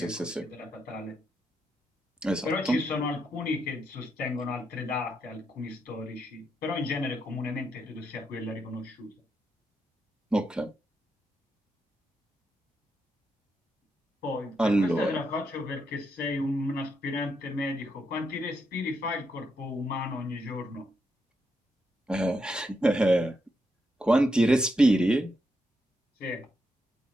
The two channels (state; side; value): normal; both; correlation 0.81